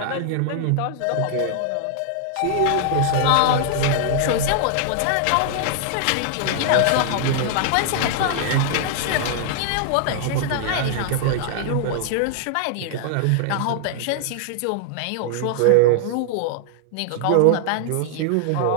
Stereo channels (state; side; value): different; both; correlation -0.01